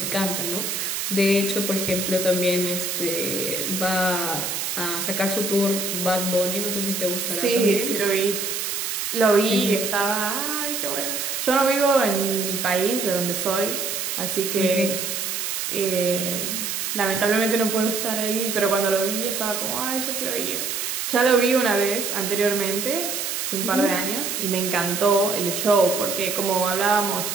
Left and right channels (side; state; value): right; noise; hiss, 2 dB below the sound